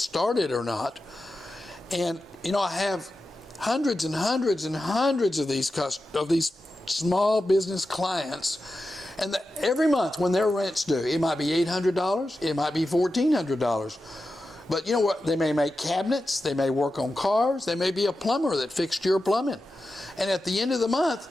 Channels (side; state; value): both; normal; correlation 0.91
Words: or not. And you know, I have hundreds and hundreds and hundreds of these small business clients, and every month when their rent's due, it might be $800, it might be $1,400. But you know what? They may make cabinets, they may work on cars, they may be a plumber that fixed your plumbing. And at the end of the month,